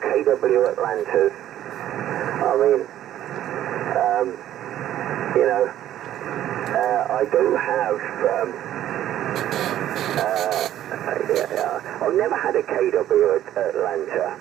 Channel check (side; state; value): left; quieter; 12.3 dB